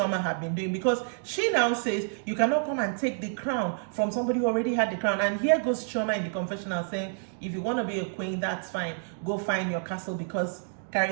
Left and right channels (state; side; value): silent; left; digital silence